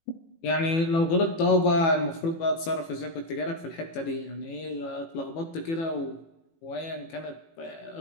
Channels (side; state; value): right; late; 18 ms